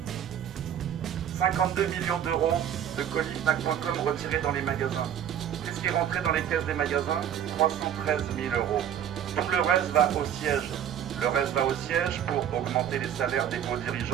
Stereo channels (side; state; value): left; quieter; 9.6 dB